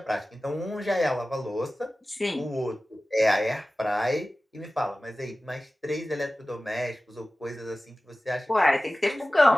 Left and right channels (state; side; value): normal; both; correlation 0.96